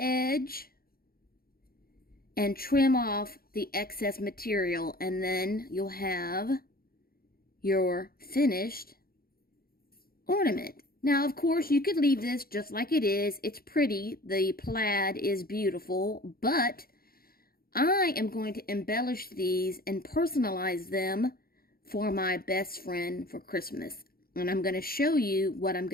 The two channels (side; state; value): right; late; 0.43 ms